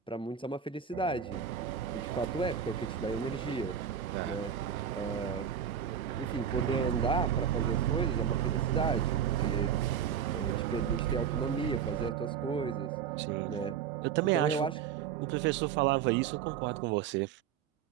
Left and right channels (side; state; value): left; quieter; 8.0 dB